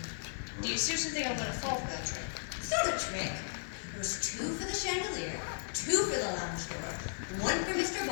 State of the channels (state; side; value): silent; right; digital silence